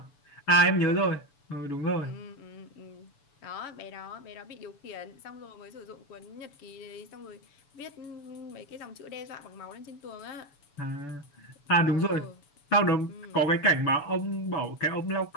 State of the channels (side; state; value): right; late; 6.9 ms